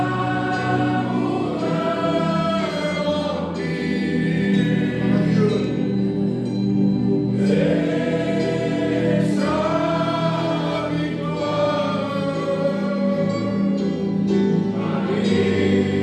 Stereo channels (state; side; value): identical; both; correlation 1.00